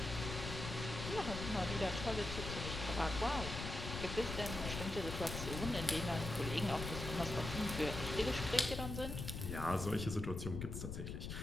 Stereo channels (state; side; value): noise; left; rumble, 5 dB below the sound